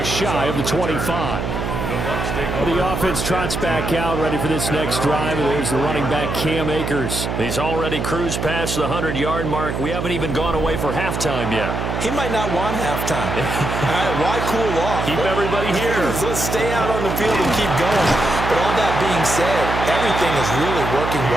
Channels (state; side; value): noise; right; hum, 3 dB below the sound